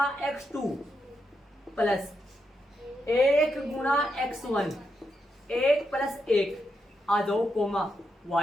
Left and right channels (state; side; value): normal; both; correlation 0.83